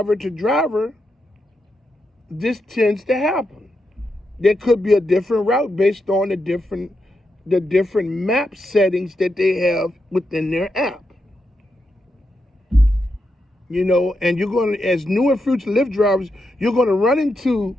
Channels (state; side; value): normal; both; correlation 0.84